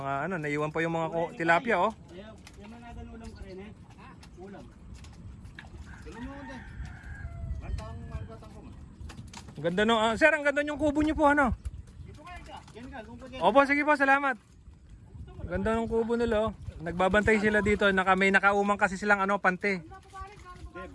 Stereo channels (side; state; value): both; identical; correlation 1.00